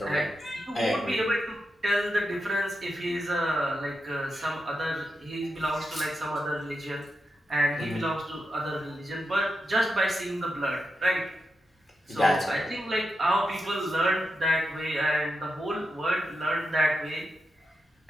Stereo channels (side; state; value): both; normal; correlation 0.87